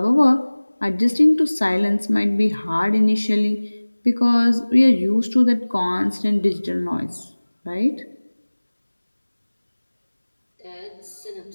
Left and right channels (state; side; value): inverted; both; correlation -1.00